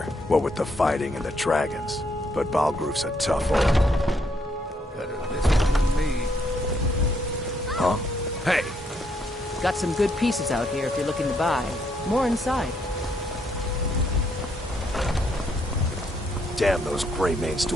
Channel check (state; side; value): normal; both; correlation 0.73